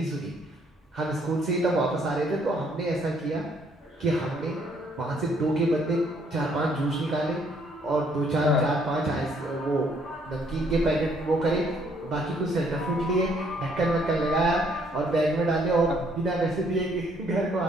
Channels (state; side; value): normal; both; correlation 0.66